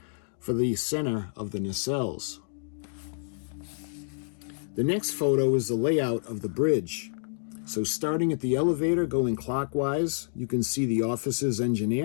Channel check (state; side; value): silent; right; digital silence